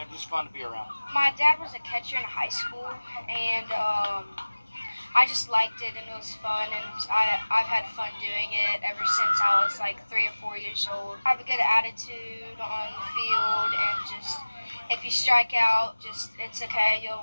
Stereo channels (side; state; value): both; inverted; correlation -1.00